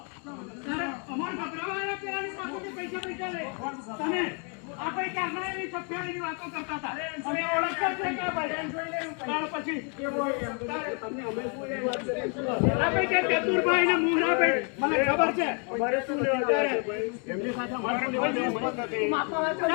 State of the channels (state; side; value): quieter; right; 38.6 dB